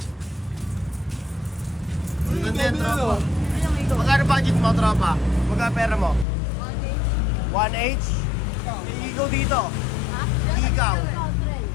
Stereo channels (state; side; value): drops out; right; at 6.2 s